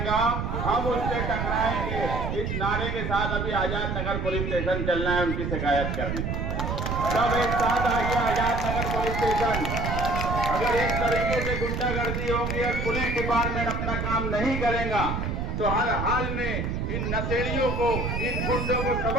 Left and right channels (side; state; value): right; noise; rumble, 2 dB below the sound